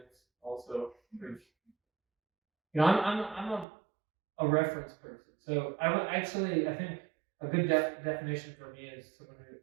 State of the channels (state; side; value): drops out; left; at 3.7 s